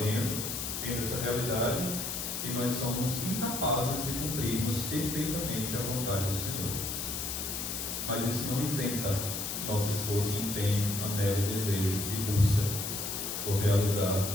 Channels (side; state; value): left; noise; hiss, 3 dB below the sound